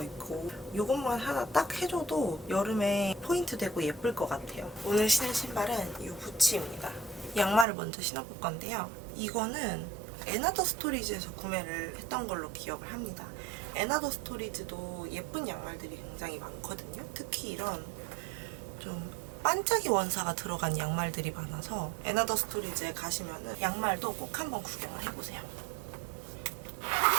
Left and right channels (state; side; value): drops out; left; at 7.7 s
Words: 입고 이것만 하나 딱 해줘도 여름에 포인트 되고 예쁠 것 같아요. 오늘 신을 신발은 이 부츠입니다. 양말을 먼저 신어볼 건데요. 이거는 에나더 스토리지에서 구매를 했던 걸로 기억을 합니다. 에나더 스토리지도 예쁜 양말들이 굉장히 많거든요. 특히 이런 좀 반짝이 원사가 들어간 양말들이 많아서 에나더 스토리지에 가시면은 양말도 꼭 한번 구경을 해보세요.